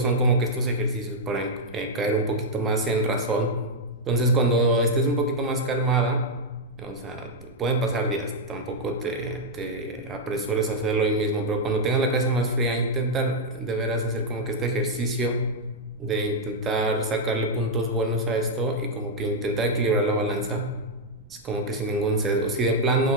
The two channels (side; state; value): right; noise; rumble, 26 dB below the sound